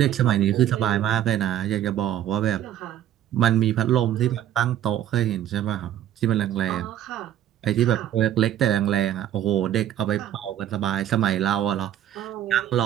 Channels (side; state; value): left; quieter; 11.4 dB